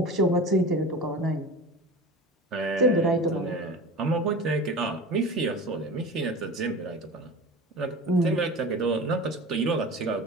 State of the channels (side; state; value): both; normal; correlation 0.34